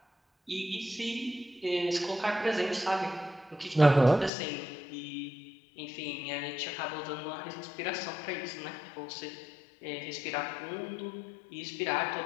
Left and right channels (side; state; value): right; drops out; at 4.3 s